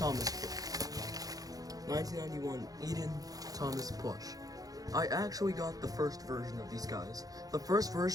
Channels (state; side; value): late; left; 0.18 ms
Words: plush. 1991 Eden Thomas plush. I actually got the first version of these guys. The first